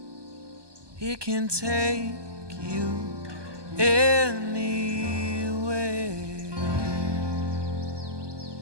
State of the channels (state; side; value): late; left; 1.2 ms